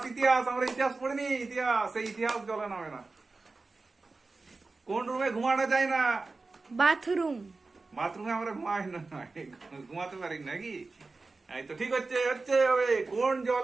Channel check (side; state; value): left; quieter; 3.7 dB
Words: ইতিহাস আমরা ইতিহাস পড়িনি? ইতিহাস, সেই ইতিহাস জলে নামে না। কোন রুমে ঘুমানো যায় না? বাথরুম। বাথরুমে আমরা ঘুমাই না, ঘুমাতে পারি নাকি? এই তো ঠিক হচ্ছে, হচ্ছে হবে।